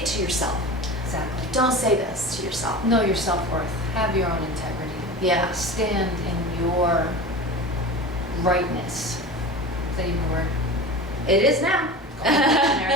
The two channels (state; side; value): normal; both; correlation 0.32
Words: to yourself. Exactly. Don't say this to yourself. Know your self-worth. Have your own integrity. Yeah. Stand in your rightness. Is that even a word? It is now.